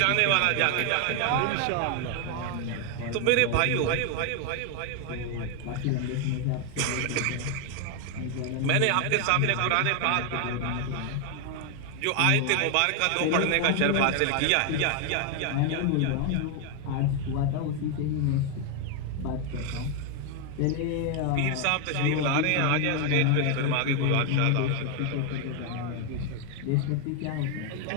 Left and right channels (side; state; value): both; different; correlation 0.01